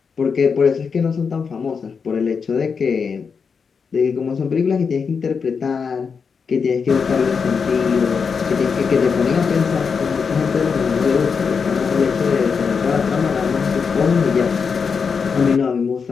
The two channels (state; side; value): quieter; right; 5.8 dB